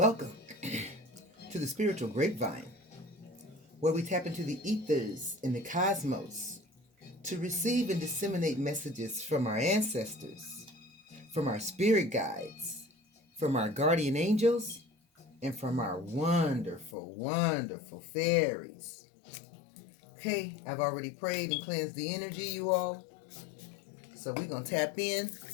to the Spiritual Grapevine, where we tap into the ethers in the cosmos to receive and disseminate messages from our ancestors, from our spirit guides, from our guardian angels, and from our wonderful, wonderful fairies. Okay, I've already prayed and cleansed the energy, you all. So we're going to tap in,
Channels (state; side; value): drops out; right; at 16.9 s